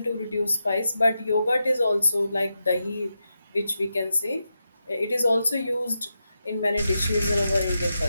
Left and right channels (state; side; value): inverted; both; correlation -0.88